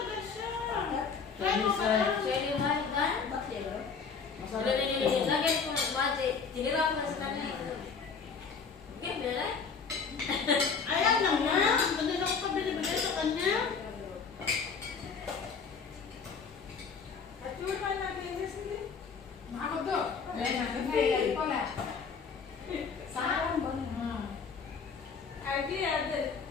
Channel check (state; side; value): quieter; right; 5.6 dB